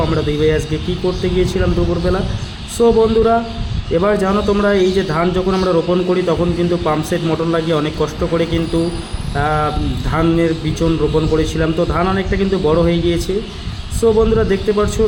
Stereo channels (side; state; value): both; identical; correlation 1.00